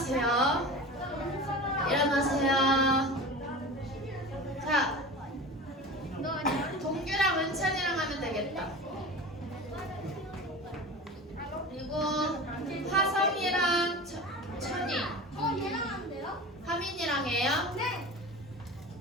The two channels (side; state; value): both; normal; correlation 0.33